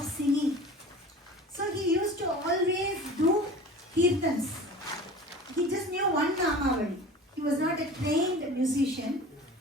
singing. So he used to always do kirtans. He just knew one Namavali. He was not a trained musician,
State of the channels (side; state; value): both; normal; correlation 0.39